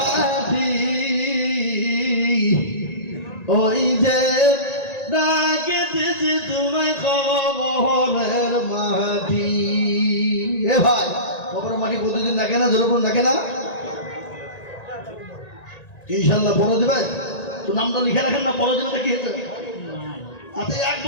ওই যে ডাকে দিছি তোমায় কবরের মাটি। এ ভাই কবরের মাটি প্রতিদিন ডাকে না? যেরকম ডাকে না? ইনশাল্লাহ পরে দেবে তো। নামটা লিখে রাখেন না, পরে দেবে কি হয়েছে? আচ্ছা 1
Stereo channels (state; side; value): late; right; 1.9 ms